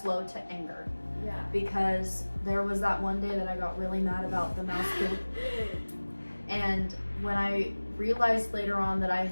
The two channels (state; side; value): inverted; both; correlation -1.00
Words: to anger. Yeah. Because there was that one day that I got really mad about the mouse poop. And when I realized later on that I